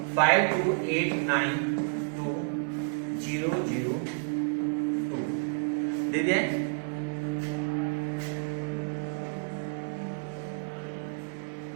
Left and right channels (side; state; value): left; silent; 58 dB below the other